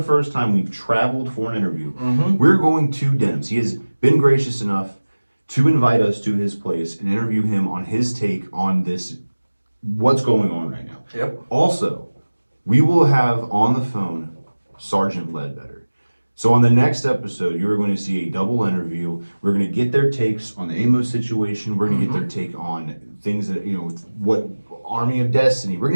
first time we've traveled for an interview. Mm-hmm. We're going to Denim's. He has been gracious enough to invite us to his place and interview him on his take on this, what's going on right now. Yep. Also, we will have on the phone Sergeant Ledbetter. So on the next episode, you are going to see a double interview. We're going to get their takes on the Amos situation. We're going to get their take on things that, what Army of Destiny. We're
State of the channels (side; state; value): both; inverted; correlation -1.00